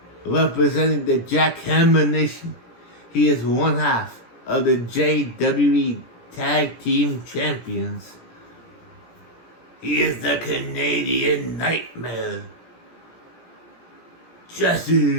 representing the Jackhammer Nation, he is one half of the JWE Tag Team Champions. He is the Canadian Nightmare,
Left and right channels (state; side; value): late; right; 17 ms